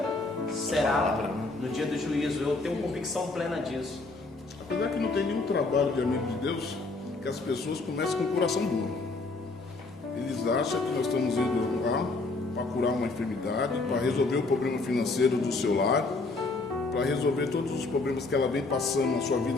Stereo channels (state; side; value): quieter; right; 3.5 dB